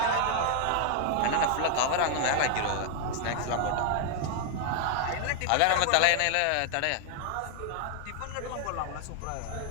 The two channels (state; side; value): different; both; correlation 0.00